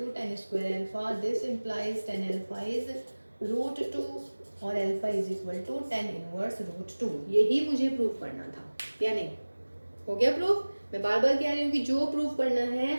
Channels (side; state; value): both; inverted; correlation -1.00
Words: tan square alpha, this implies tan alpha is root 2 और alpha is equal to tan inverse root 2। यही मुझे प्रूफ करना था, या नहीं, हो गया प्रूफ। मैं बार बार कह रही हूँ कि जो प्रूफ करना है